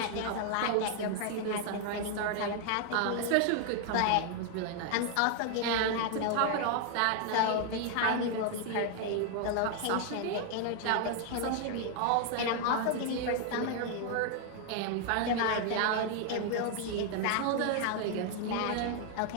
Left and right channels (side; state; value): both; different; correlation 0.00